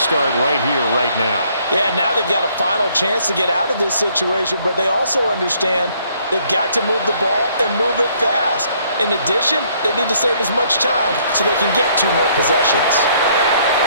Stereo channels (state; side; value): inverted; both; correlation -0.65